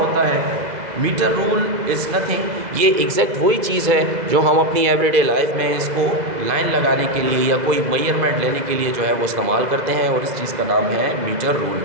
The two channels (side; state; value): left; late; 2.0 ms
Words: है? मीटर रूल इज़ नथिंग, ये एग्जैक्ट वही चीज़ है जो हम अपनी एवरीडे लाइफ में इसको लाइन लगाने के लिए या कोई मेजरमेंट लेने के लिए जो है वो इस्तेमाल करते हैं, और इस चीज़ का नाम है मीटर रूल।